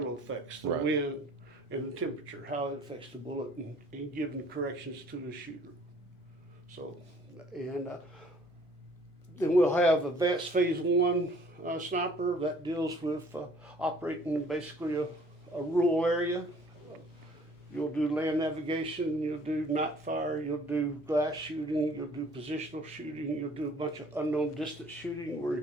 effects, the wind and the temperature, how it affects the bullet, and giving corrections to the shooter. So, and then we'll have advanced phase 1 sniper that deals with operating basically a rural area. You'll do land navigation, you'll do night fire, you'll do glass shooting, you'll do positional shooting, you'll do a bunch of unknown distance shooting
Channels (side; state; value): both; normal; correlation 0.55